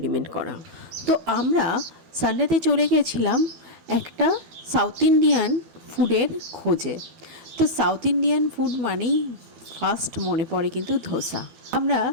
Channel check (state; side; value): late; left; 12 ms